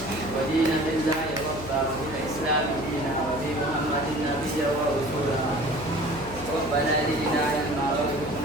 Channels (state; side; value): noise; left; hum, 12 dB below the sound